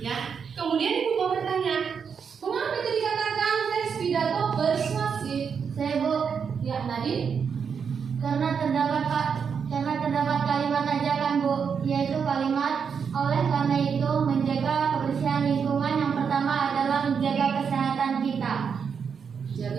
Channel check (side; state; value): left; quieter; 6.6 dB